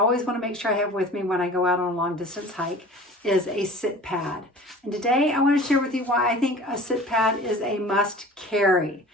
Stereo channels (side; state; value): both; normal; correlation 0.42